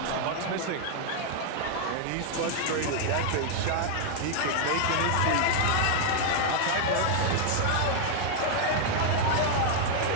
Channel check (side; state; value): both; different; correlation 0.00